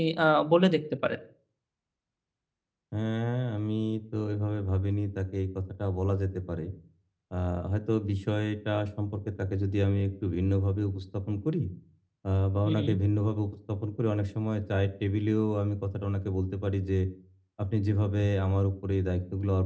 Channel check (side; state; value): both; identical; correlation 1.00